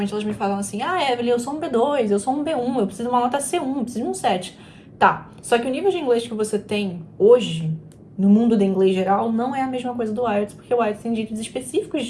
elas me falam assim: ah, Evelyn, eu sou um B2, eu sou um B1, eu preciso de uma nota C1, eu preciso de um 7. Tá, só que o nível de inglês que você tem hoje, no mundo do inglês geral, não é a mesma coisa do IELTS, porque o IELTS tem jeitos específicos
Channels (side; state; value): both; identical; correlation 1.00